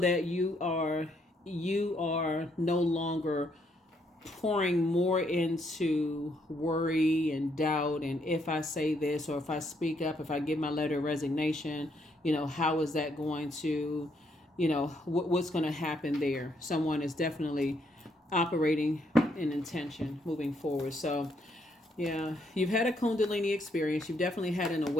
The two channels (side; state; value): both; normal; correlation 0.73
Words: you are no longer pouring more into worry and doubt, and if I say this, or if I speak up, if I give my letter of resignation, how is that going to, what's going to happen there? Someone is definitely operating in intention moving forward. So yeah, you've had a Kundalini experience. You've definitely had an